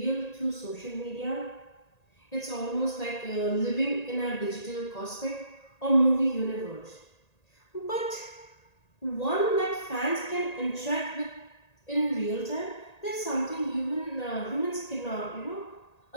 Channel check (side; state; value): right; late; 1.8 ms